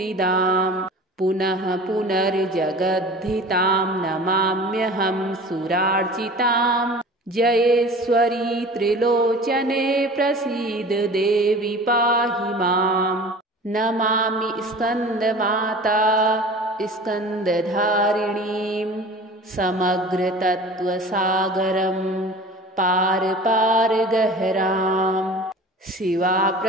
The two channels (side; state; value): both; normal; correlation 0.40